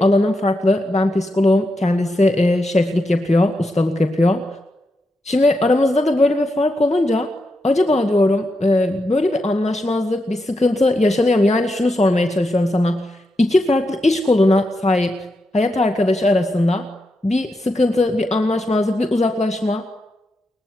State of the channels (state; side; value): normal; both; correlation 0.85